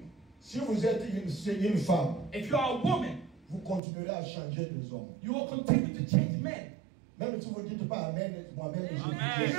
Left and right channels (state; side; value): drops out; left; at 3.8 s